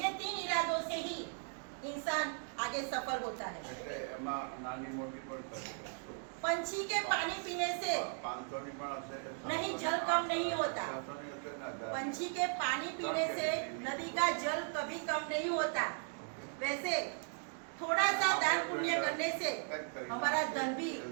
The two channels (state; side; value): silent; left; 53 dB below the other